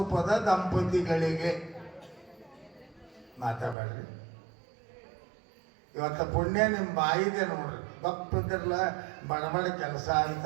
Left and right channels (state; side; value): drops out; left; at 3.8 s